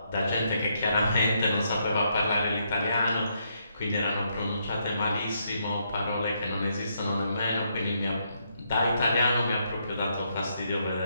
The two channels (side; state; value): both; inverted; correlation -0.76